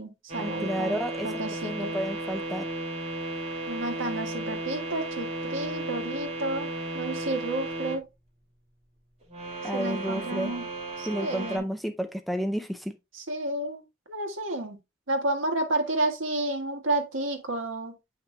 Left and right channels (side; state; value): both; normal; correlation 0.06